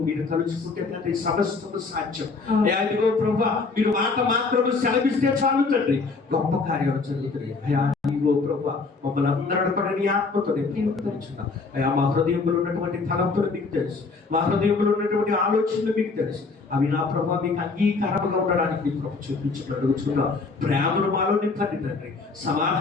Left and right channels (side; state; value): right; quieter; 4.2 dB